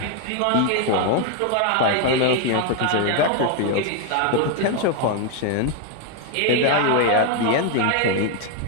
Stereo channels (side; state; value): both; different; correlation 0.01